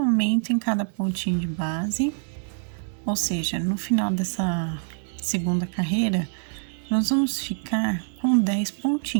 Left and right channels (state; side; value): silent; left; 61 dB below the other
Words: em cada pontinho de base, ou seja, no final dessa segunda carreira, nós vamos ficar com 10